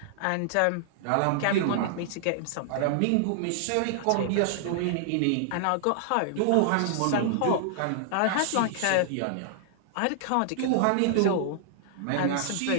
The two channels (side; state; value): both; different; correlation -0.01